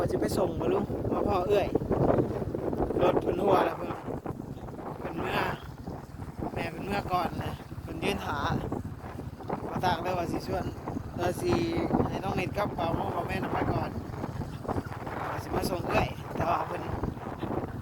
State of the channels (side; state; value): both; identical; correlation 1.00